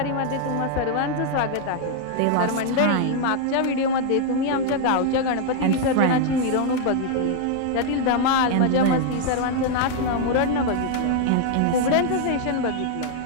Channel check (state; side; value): different; both; correlation 0.00